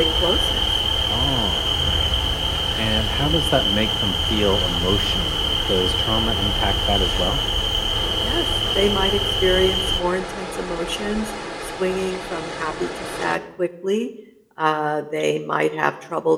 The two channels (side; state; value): both; identical; correlation 1.00